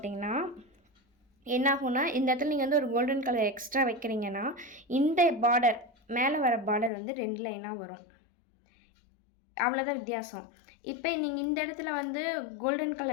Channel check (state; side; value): drops out; right; at 6.9 s